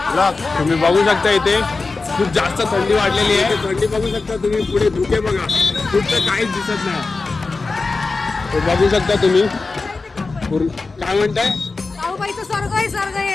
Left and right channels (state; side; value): quieter; right; 3.9 dB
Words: तुम्ही बघू शकता इथे खूप जास्त थंडी वाढलेली आहे. थंडी बघू शकता तुम्ही, पुढे धुके बघा, कुठं काहीच दिसत नाही. बघू शकता तुम्ही. काय म्हणताय? साऊबाईचं स्वर्ग आहे, स्वर्ग